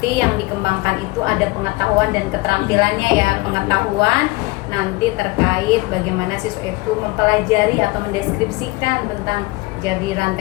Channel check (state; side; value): quieter; right; 22.8 dB